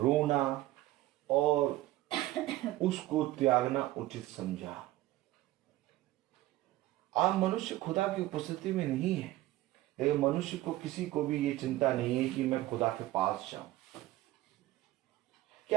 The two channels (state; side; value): quieter; left; 16.4 dB